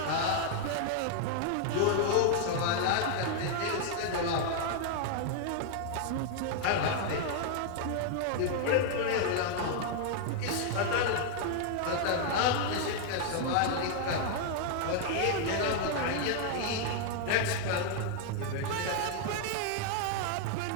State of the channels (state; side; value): different; both; correlation 0.00